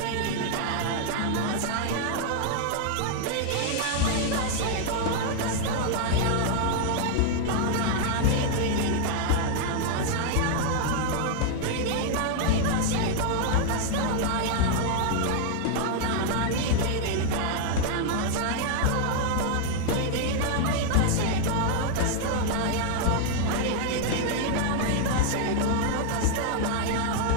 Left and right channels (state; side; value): different; both; correlation 0.00